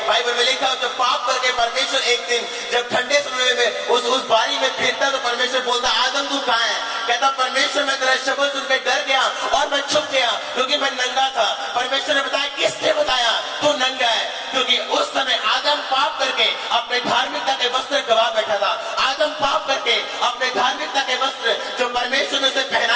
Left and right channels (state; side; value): identical; both; correlation 1.00